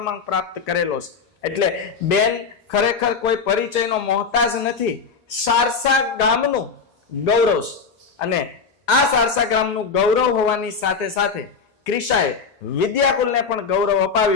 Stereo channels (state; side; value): quieter; right; 5.3 dB